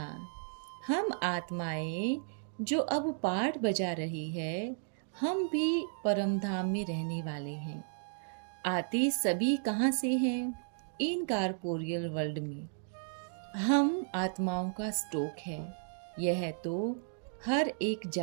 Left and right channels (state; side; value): silent; left; digital silence